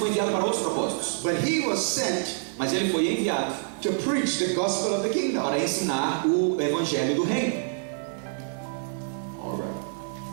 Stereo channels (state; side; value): silent; left; 60 dB below the other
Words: enviado para outros propósitos. but he was sent Mas ele foi enviado to preach the gospel of the kingdom. para ensinar o evangelho do reino. All right.